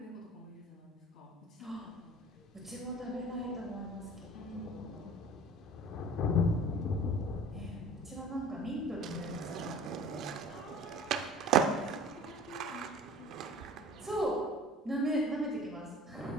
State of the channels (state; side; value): normal; both; correlation 0.43